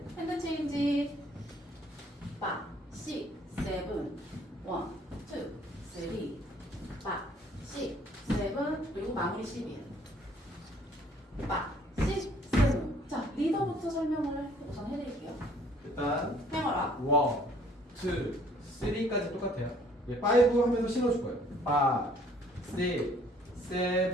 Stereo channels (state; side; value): normal; both; correlation 0.59